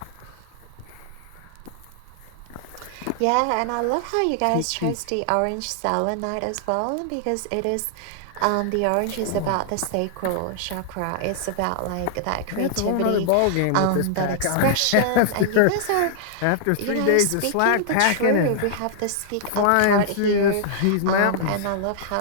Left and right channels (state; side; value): different; both; correlation -0.01